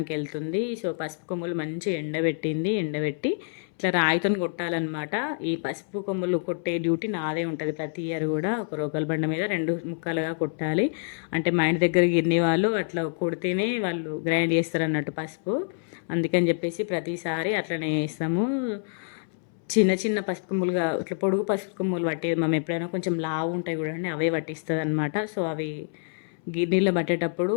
వెళ్తుంది. సో పసుపు కొమ్ములు మంచిగా ఎండబెట్టి ఇట్లా రాయితో కొట్టాలన్నమాట. ఈ పసుపు కొమ్ములు కొట్టే డ్యూటీ నాదే ఉంటుంది ప్రతి ఇయర్ కూడా. ఒక రోకల బండ మీద 2 ముక్కలుగా కొట్టాలి. అంటే మా ఇంటి దగ్గర గిన్నె వాళ్ళు అట్లా కొడితేనే వాళ్ళు గ్రైండ్ చేస్తారు అన్నట్టు పసుపు. అందుకని చెప్పేసి ప్రతిసారి అట్లనే వేస్తాము. చిన్న చిన్న పసుపు కొమ్ములుగా ఇట్లా పొడుగు పసుపు కొమ్ములు పట్టేది మేము ఎప్పుడైనా, కొంచెం లావు ఉంటాయి చూడండి అవే పట్టిస్తుంది అనమాట. సో అవి గిన్నెలో పట్టేటప్పుడు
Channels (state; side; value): silent; right; 60 dB below the other